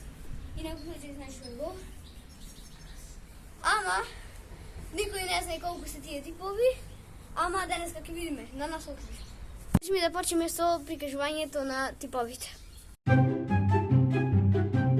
И некој ќе знае што е гол. Ама никој не знае колку се тие типови. Ама денеска ќе видиме на наслов. Ми да почнеме со прикажувањето на типовите.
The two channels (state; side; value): identical; both; correlation 1.00